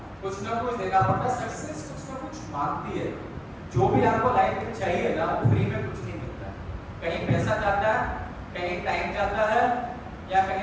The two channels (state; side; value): identical; both; correlation 1.00